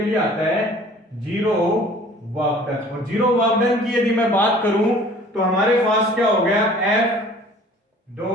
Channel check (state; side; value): normal; both; correlation 0.50